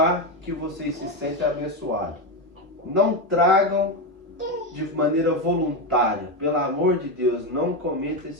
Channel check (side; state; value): both; normal; correlation 0.11